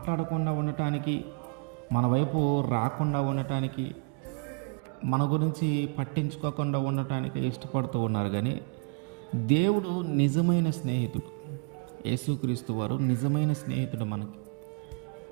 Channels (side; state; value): left; quieter; 37.9 dB